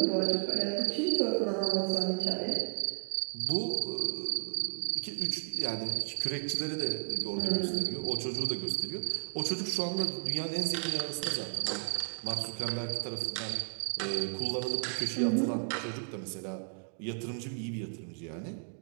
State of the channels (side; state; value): left; silent; 56 dB below the other